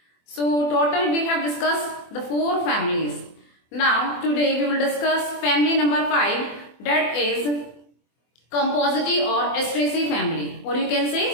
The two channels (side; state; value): right; late; 24 ms